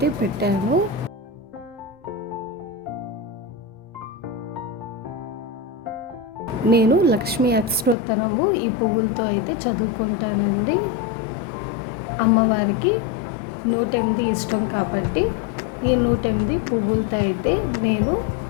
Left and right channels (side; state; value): right; drops out; at 8.0 s